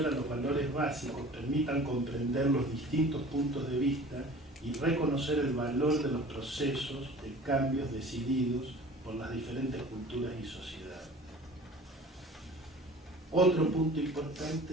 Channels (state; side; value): normal; both; correlation 0.44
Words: a los valores básicos permitan comprender los distintos puntos de vista y reconocer el valor de los procesos de cambios decididos por las diferentes culturas y sociedades. Otro punto